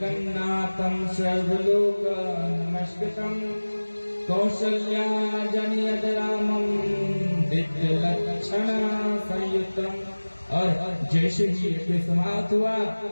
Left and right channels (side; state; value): both; inverted; correlation -1.00